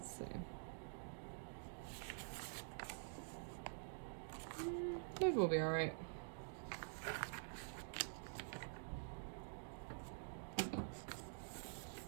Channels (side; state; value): left; silent; digital silence